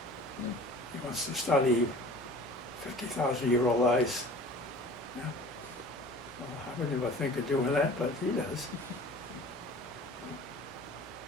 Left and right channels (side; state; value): both; normal; correlation 0.44